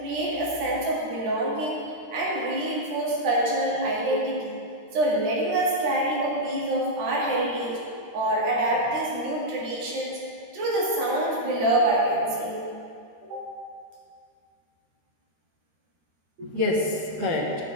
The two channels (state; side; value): late; left; 13 ms